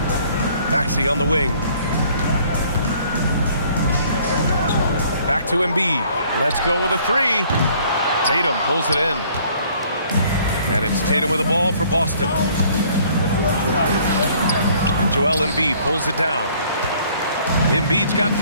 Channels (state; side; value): inverted; both; correlation -0.58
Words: Maxey on the wing. Back to Embiid. Let's go with a 3. Tatum pulls it in. And it's Tatum with the ball for Boston. And Joel Embiid pulls it down. Embiid's got